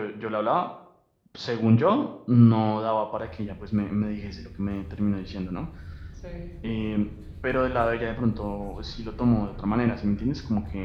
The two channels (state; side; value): identical; both; correlation 1.00